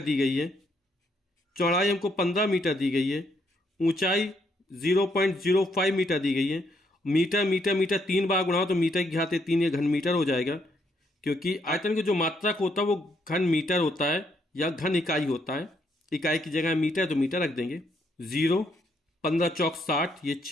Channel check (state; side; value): normal; both; correlation 0.73